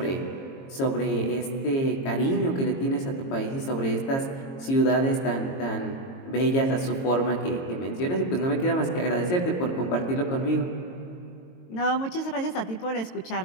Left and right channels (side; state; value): right; late; 22 ms